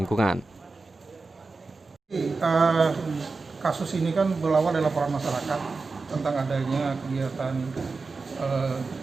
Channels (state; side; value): quieter; left; 3.9 dB